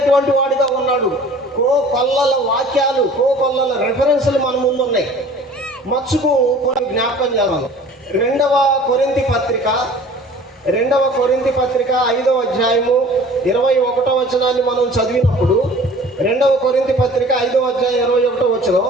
వాడిగా ఉన్నాడు. కోకొల్లల వాక్యాలు, కోకొల్లల రెఫరెన్సులు మన ముందు ఉన్నాయి. మచ్చుకు కొన్ని జ్ఞాపకం చేద్దాం. రెండవ కొరింథీ పత్రిక 5వ అధ్యాయము 21వ వచనాన్ని మనం చదివినప్పుడు, 2వ కొరింథీ పత్రిక 5వ అధ్యాయం 21వ వచనం,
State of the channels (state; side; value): normal; both; correlation 0.47